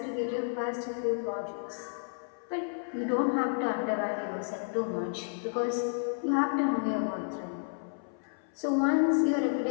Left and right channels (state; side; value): silent; right; 57 dB below the other